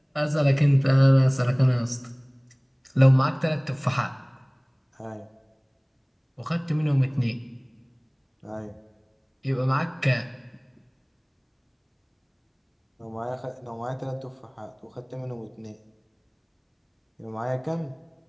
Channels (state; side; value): identical; both; correlation 1.00